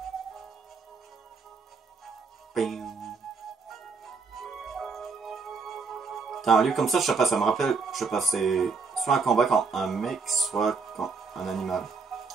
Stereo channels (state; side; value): quieter; left; 4.8 dB